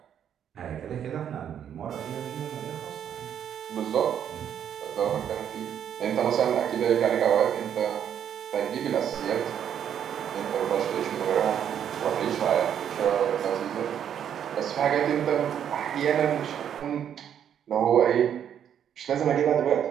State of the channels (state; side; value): quieter; left; 9.2 dB